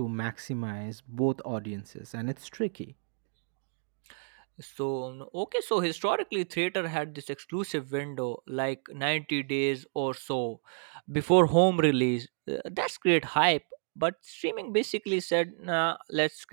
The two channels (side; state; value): left; silent; digital silence